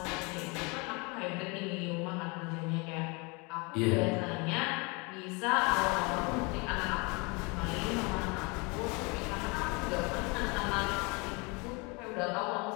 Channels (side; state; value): right; quieter; 28.9 dB